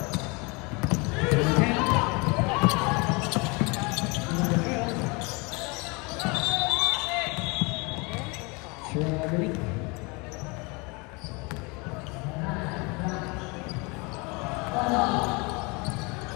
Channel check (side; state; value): right; quieter; 28.5 dB